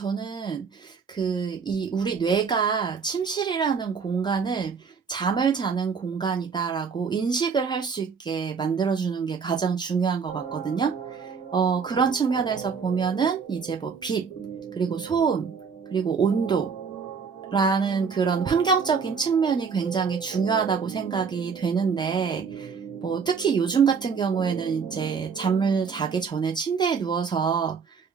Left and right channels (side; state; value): left; quieter; 5.8 dB